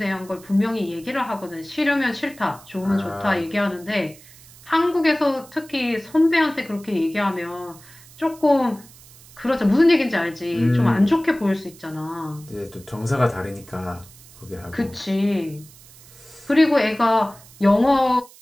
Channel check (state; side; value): noise; right; hiss, 22 dB below the sound